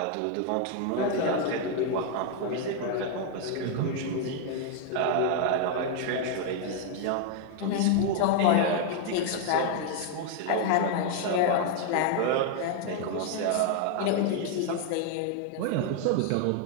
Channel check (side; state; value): both; different; correlation 0.00